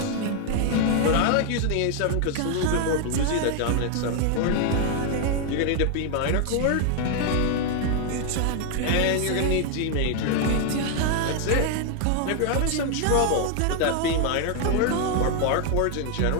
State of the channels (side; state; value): both; different; correlation 0.00